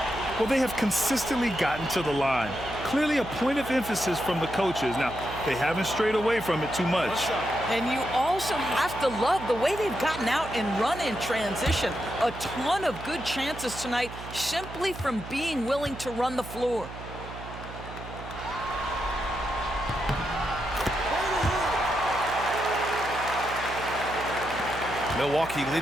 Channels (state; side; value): noise; right; hum, 12 dB below the sound